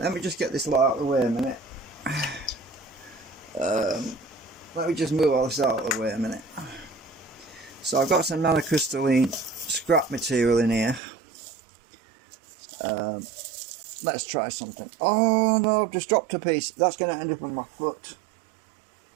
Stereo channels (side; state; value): left; drops out; at 11.0 s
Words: me just get this lot out of the way a minute. Let me just move all this out of the way a minute. So I've got some nanocrystalline scrap material in here. Let's try something. Oh no, I've just dropped a piece. That's going to end up on my foot.